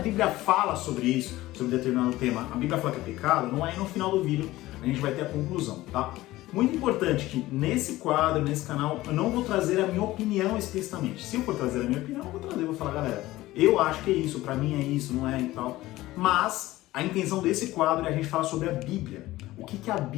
fala sobre isso, sobre determinado tema. A Bíblia fala que é pecado, não é? No final do vídeo a gente vai ter a conclusão, tá? Muito importante que nesse quadro, nesse canal, eu não vou trazer a minha opinião explicitamente. Se eu for trazer a minha opinião, eu vou falar, galera, eu acho que é isso, pra mim é isso, não é e tal. Mas a intenção desse quadro é a gente falar sobre a Bíblia. O que a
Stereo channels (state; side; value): quieter; right; 17.2 dB